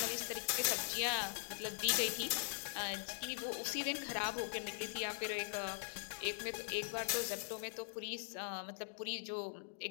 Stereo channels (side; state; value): right; silent; digital silence